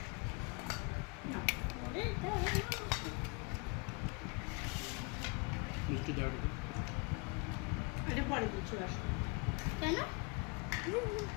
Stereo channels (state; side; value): quieter; right; 31.4 dB